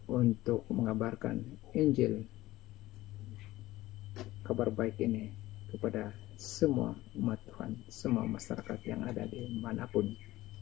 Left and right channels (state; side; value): quieter; right; 17.0 dB